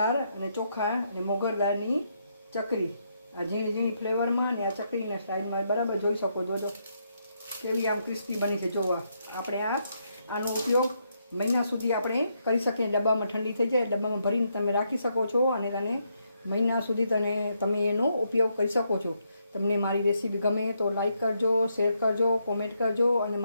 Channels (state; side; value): inverted; both; correlation -0.78